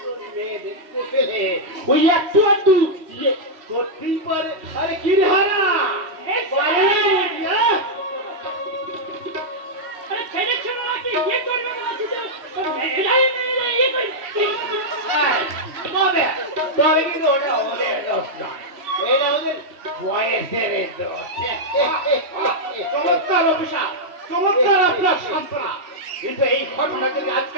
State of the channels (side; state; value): left; late; 3.1 ms